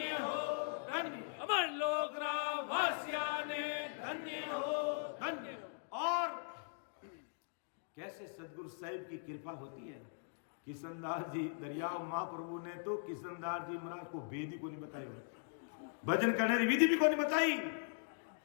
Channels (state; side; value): silent; right; digital silence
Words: हो धन्य, अमर लोक राम वास्याने धन्य हो धन्य। और कैसे सदगुरु साहिब की कृपा होती है। किशनदास जी दरियाव महाप्रभु ने तो किशनदास जी महाराज को वेदी को नहीं बताई, भजन करने की विधि भी को नहीं बताई,